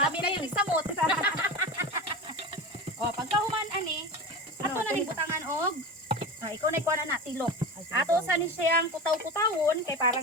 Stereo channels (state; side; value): normal; both; correlation 0.28